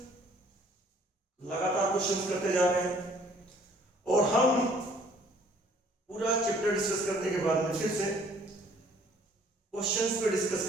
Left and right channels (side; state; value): both; normal; correlation 0.58